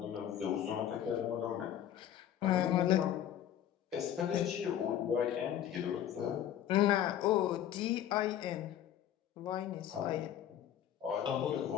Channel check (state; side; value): quieter; right; 10.7 dB